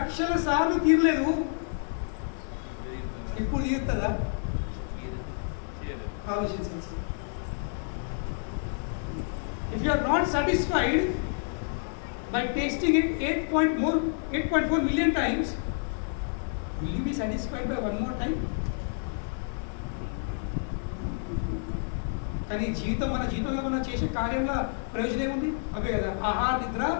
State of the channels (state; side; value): silent; right; digital silence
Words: సార్లు తీరలేదు, ఇప్పుడు తీరుతుందా? ఆలోచించాల్సి. If you are not satisfied by tasting it 8.4 million times, will you be satisfied by one more time? కానీ జీవితం, మన జీవితంలో మనం చేసే కార్యంలో ప్రయోజనం ఏముంది? అవే కదా, ఆహార, నిద్ర,